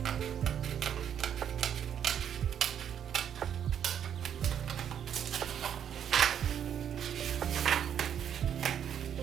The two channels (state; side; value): quieter; left; 9.0 dB